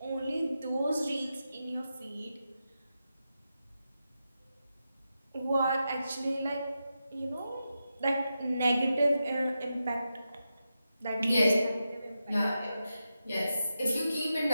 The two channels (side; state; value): both; inverted; correlation -0.89